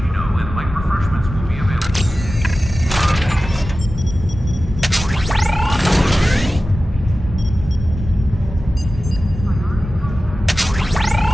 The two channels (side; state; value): both; normal; correlation 0.95